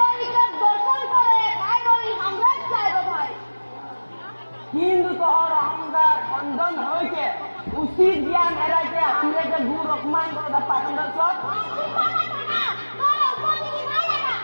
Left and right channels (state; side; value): inverted; both; correlation -1.00